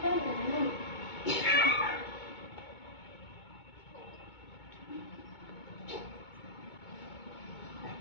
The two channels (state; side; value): late; right; 2.2 ms